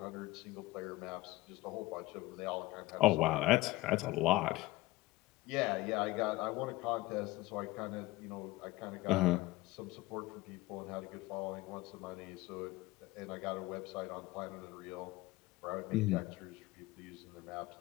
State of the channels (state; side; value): quieter; right; 19.2 dB